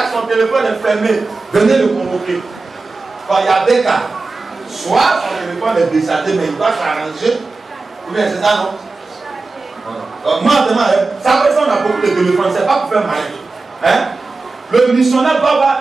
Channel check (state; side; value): quieter; left; 3.7 dB